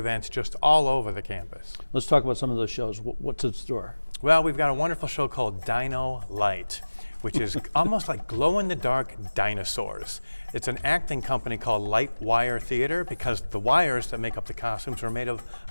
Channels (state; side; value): inverted; both; correlation -1.00